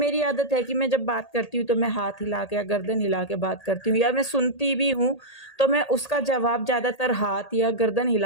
आदत है कि मैं जब बात करती हूँ तो मैं हाथ हिला के या गर्दन हिला के बात करती हूँ, या मैं सुनती भी हूँ तो मैं उसका जवाब ज़्यादातर हाथ या गर्दन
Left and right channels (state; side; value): late; right; 1.8 ms